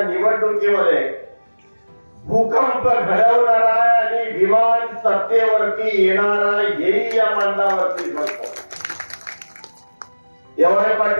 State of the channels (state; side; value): inverted; both; correlation -1.00